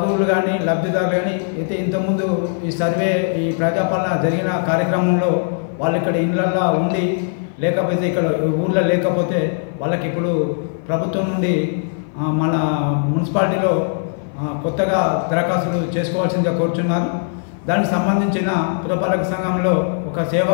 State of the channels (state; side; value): silent; right; 58 dB below the other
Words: కానీ లబ్ధిదారులు కానీ అయితే ఇంతకుముందు ఈ సర్వే ఈ ప్రజాపాలన జరిగిన కార్యక్రమంలో వాళ్ళు ఇక్కడ ఇళ్ళల్లో ఉండి లేకపోతే ఇక్కడ ఊళ్ళో లేకపోతే వాళ్ళకి ఇప్పుడు ప్రభుత్వం నుండి మన మున్సిపాలిటీలో కొత్తగా దరఖాస్తులు చేసుకోవాల్సిందిగా కోరుచున్నారు. దానికి సంబంధించిన పురపాలక సంఘంలో ఒక సేవా